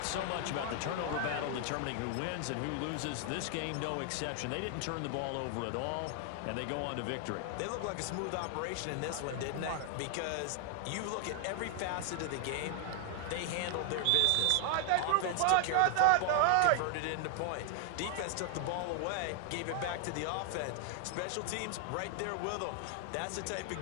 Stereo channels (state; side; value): different; both; correlation 0.00